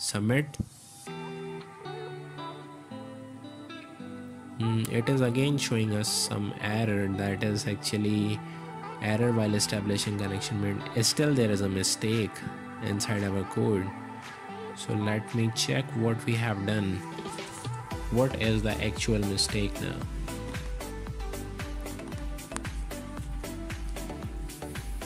It is again showing us some error, that is actually error while establishing connection made. Still there is a mistake inside our code. So let me check what we have done. What is the actual mistake now?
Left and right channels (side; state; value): both; identical; correlation 1.00